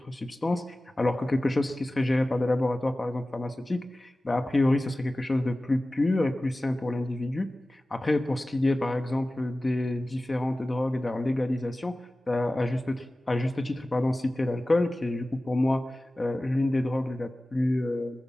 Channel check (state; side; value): normal; both; correlation 0.97